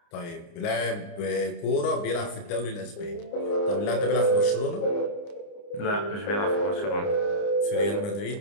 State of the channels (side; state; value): right; late; 29 ms